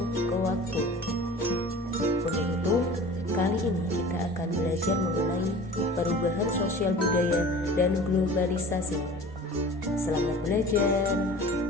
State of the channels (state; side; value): normal; both; correlation 0.41